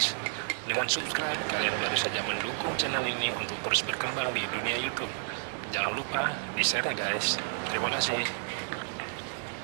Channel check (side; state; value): left; silent; digital silence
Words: Dengan subscribe, kalian baru saja mendukung channel ini untuk terus berkembang di dunia YouTube. Jangan lupa di-share ya guys. Terima kasih.